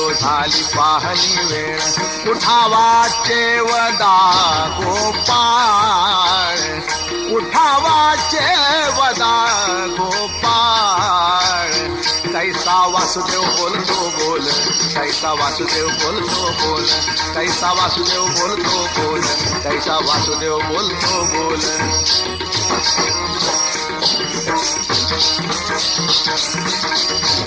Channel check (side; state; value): left; noise; hum, 24 dB below the sound